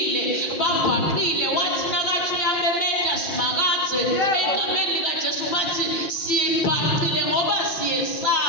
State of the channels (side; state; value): right; late; 6.0 ms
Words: babhaqile. Wathi nakathi uyamemeta simakadze egameni likaJesu bathi sibhaqile ngoba